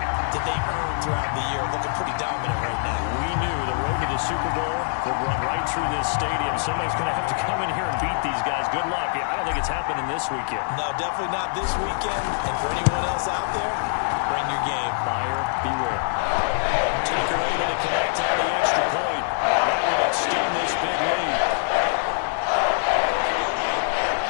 that they earned throughout the year. Looking pretty dominant right now. We knew the road to the Super Bowl would run right through this stadium. Somebody's going to have to come in here and beat these guys. Good luck. I don't think it's happening this weekend. No, definitely not this weekend. And for anyone else out there, bring your game. Buyer beware. Tucker able to connect on the extra point. And that will extend this big lead.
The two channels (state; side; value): silent; right; digital silence